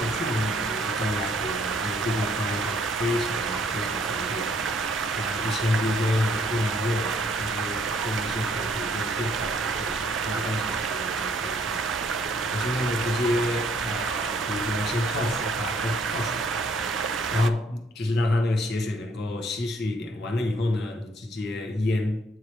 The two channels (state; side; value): normal; both; correlation 0.64